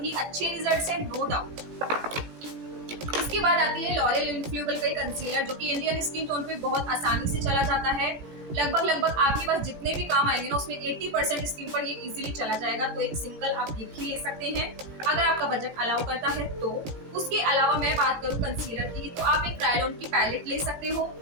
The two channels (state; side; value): late; left; 17 ms